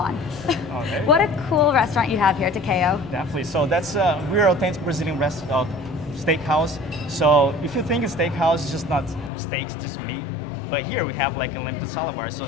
Okay. What a cool restaurant you have here, Takeo. Definitely. So that's we're authentic Brazilian steakhouse. So if you think a steakhouse is just not steaks, just meat, but here we have like a limited salad bar. So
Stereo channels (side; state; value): right; drops out; at 9.3 s